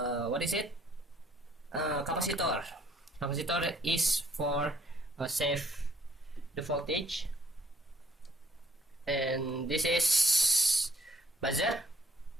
what is it? Capacitor. Capacitor is for save the voltage, and this is buzzer.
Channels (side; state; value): both; normal; correlation 0.62